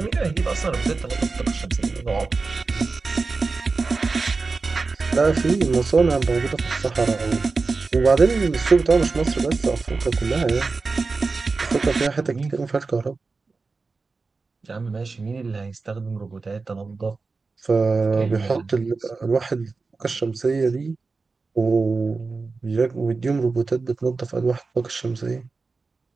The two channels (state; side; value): quieter; left; 4.1 dB